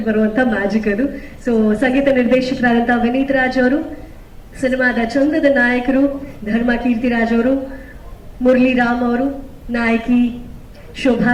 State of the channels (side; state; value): both; identical; correlation 1.00